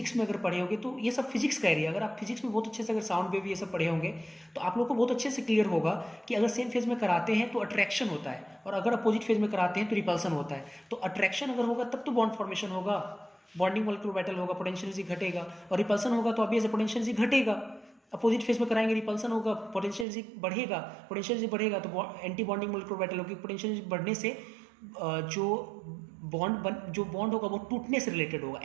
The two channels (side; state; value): left; drops out; at 20.1 s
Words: में अगर पढ़े होंगे तो ये सब फिजिक्स का एरिया, अगर आप फिजिक्स में बहुत अच्छे से अगर साउंड वेव ये सब पढ़े होंगे तो आप लोग को बहुत अच्छे से क्लियर होगा कि अगर सेम फेज में कराते हैं तो अट्रैक्शन होता है, और अगर अपोजिट फेज में कराते हैं तो रिपल्सन होता है। तो अट्रैक्शन अगर होगा तब तो बॉन्ड फॉर्मेशन होगा, बॉन्डिंग मॉलिक्यूलर ऑर्बिटल होगा, पोटेंशियल एनर्जी घटेगा। और रिपल्सन होगा तो ऑब्वियस पोटेंशियल एनर्जी घटेगा। अपोजिट फेज में कराएंगे रिपल्सन होगा, पोटेंशियल एनर्जी बढ़ेगा, पोटेंशियल एनर्जी बढ़ेगा तो एंटी बॉन्डिंग मॉलिक्यूलर ऑर्बिटल होगी। पोटेंशियल एनर्जी बढ़ने से जो बॉन्ड होगा वो टूटने से रिलेटेड होगा,